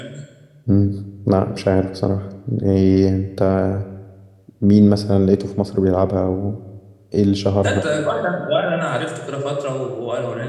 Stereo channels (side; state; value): both; identical; correlation 1.00